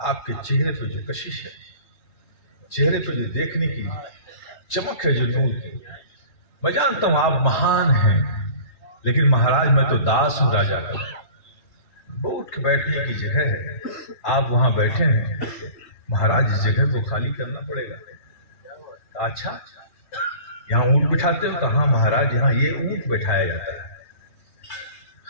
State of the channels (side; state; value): right; late; 3.2 ms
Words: आपके चेहरे पे जो कशिश है, चेहरे पे जो देखने की चमक है, जो नूर की, मैं जानता हूं आप महान हैं, लेकिन महाराज मैं तो दास हूं राजा का, वो उठ के बैठने की जगह है, आप वहां बैठे हैं, महाराज इस जगह को खाली करना पड़ेगा। अच्छा, यहाँ ऊंट बिठाते हो? कहा महाराज यहाँ ये ऊंट बैठाया जाता है।